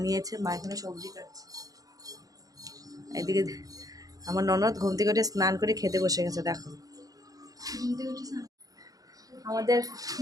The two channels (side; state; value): left; late; 0.17 ms